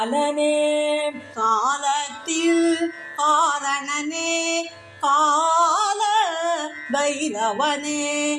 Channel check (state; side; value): identical; both; correlation 1.00